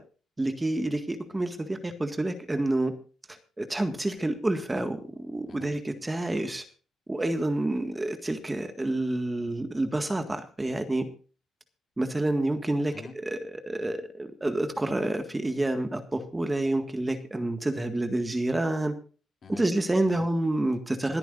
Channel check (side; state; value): both; normal; correlation 0.97